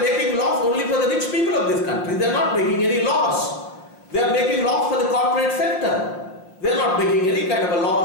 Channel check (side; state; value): right; late; 5.6 ms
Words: laws only for the rich people of this country. They are not making any laws. They are making laws for the corporate sector. They are not making any kind of a